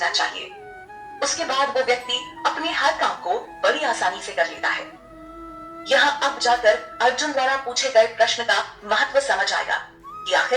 चाहिए। उसके बाद वो व्यक्ति अपने हर काम को बड़ी आसानी से कर लेता है। यहाँ अब जाकर अर्जुन द्वारा पूछे गए प्रश्न का महत्व समझ आएगा कि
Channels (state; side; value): identical; both; correlation 1.00